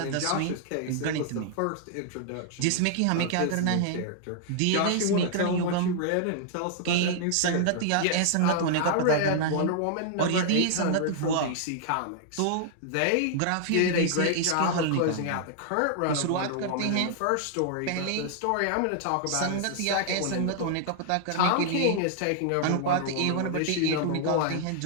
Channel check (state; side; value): different; both; correlation -0.01